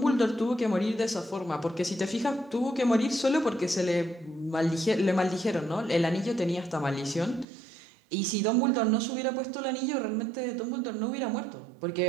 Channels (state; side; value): drops out; left; at 7.5 s